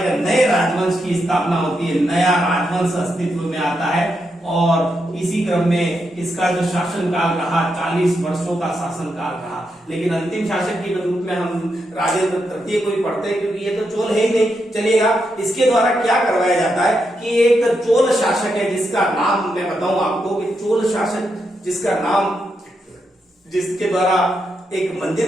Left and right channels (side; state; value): both; normal; correlation 0.83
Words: नए राजवंश की स्थापना होती है, नया राजवंश अस्तित्व में आता है। और इसी क्रम में इसका जो शासनकाल रहा 40 वर्षों का शासनकाल रहा। लेकिन अंतिम शासक के रूप में हम राजेंद्र तृतीय को ही पढ़ते हैं, क्योंकि ये तो चोल है ही नहीं। चलिएगा, इसके द्वारा क्या करवाया जाता है कि एक चोल शासक है जिसका नाम मैं बताऊं आपको, कि चोल शासक जिसका नाम, जिसके द्वारा एक